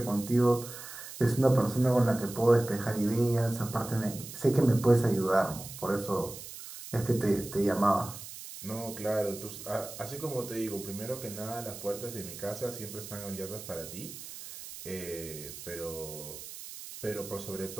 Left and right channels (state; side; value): noise; right; hiss, 12 dB below the sound